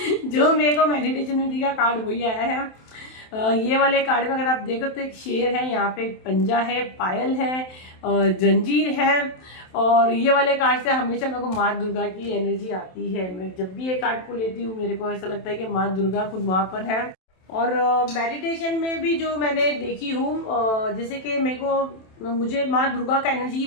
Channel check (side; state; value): right; late; 27 ms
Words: जो मेरे को मेडिटेशन में दिया कार्ड वही आया है। ये वाले कार्ड में अगर आप देखो तो एक शेर है, यहाँ पे एक पंजा है, पायल है, जंजीर है। और ये वाले कार्ड से हमेशा मेरे को माँ दुर्गा की एनर्जी आती है। मैं जब भी ये कार्ड को लेती हूँ मेरे को ऐसा लगता है कि माँ दुर्गा खुद वहां पर है। और मेडिटेशन में भी जो मैंने देखी हूँ, जैसे कि मुझे माँ दुर्गा का एनर्जी